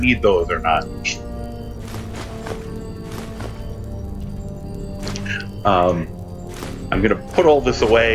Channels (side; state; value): both; identical; correlation 1.00